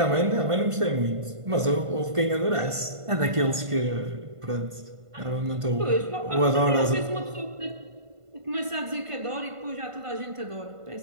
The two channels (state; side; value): late; left; 1.5 ms